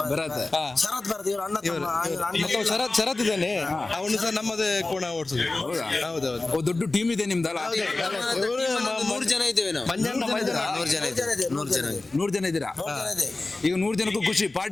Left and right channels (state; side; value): quieter; right; 3.2 dB